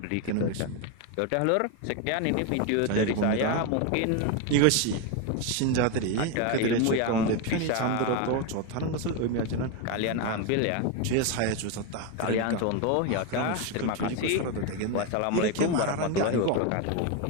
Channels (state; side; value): different; both; correlation 0.02